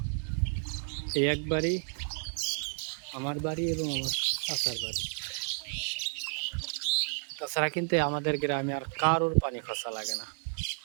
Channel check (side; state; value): left; silent; 57 dB below the other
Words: এই এক বাড়ি, আমার বাড়ি এবং আমার চাচার বাড়ি। তাছাড়া কিন্তু আমাদের গ্রামে আর কারোর পানি খসা লাগে না,